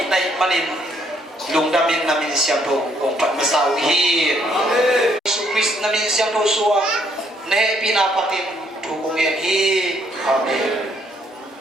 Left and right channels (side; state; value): both; normal; correlation 0.69